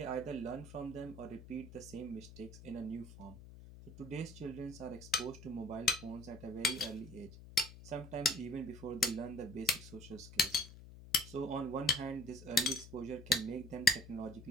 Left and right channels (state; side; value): noise; left; hum, 16 dB below the sound